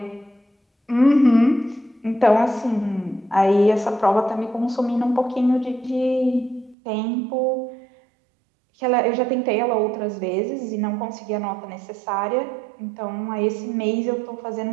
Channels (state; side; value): drops out; left; at 6.8 s